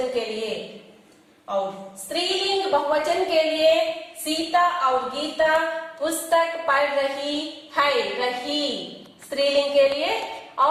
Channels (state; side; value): identical; both; correlation 1.00